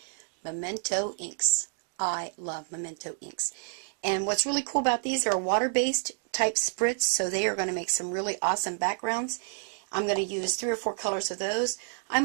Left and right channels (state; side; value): silent; left; 58 dB below the other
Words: Memento inks. I love Memento inks. And what's really cool about these, they're a water-based type spritz, so they are going to make some really awesome backgrounds. I'm going to use 3 or 4 colors of those.